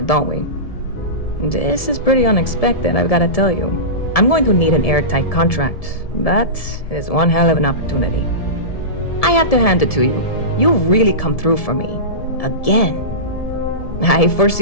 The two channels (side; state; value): right; late; 1.7 ms